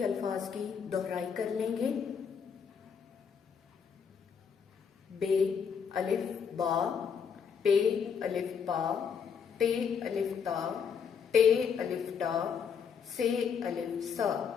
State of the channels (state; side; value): quieter; right; 6.8 dB